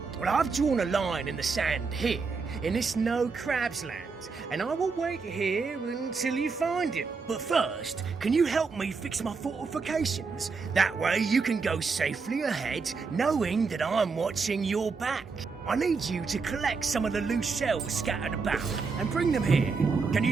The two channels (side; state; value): left; quieter; 4.8 dB